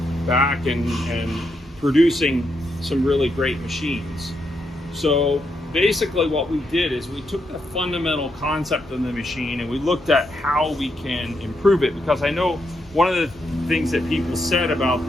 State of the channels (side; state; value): both; normal; correlation 0.80